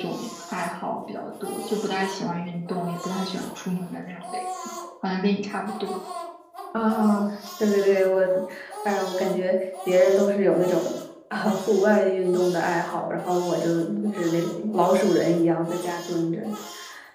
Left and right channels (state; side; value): identical; both; correlation 1.00